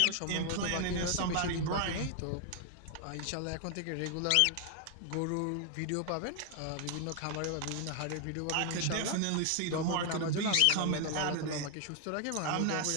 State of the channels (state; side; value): different; both; correlation 0.00